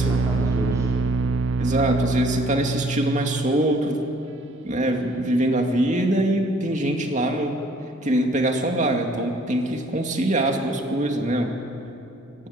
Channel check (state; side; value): normal; both; correlation 0.59